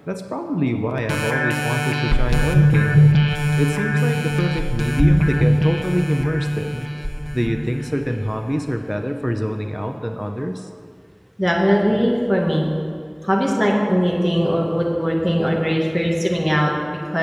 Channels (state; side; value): identical; both; correlation 1.00